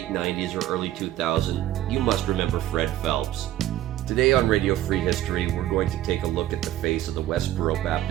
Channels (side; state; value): left; quieter; 13.5 dB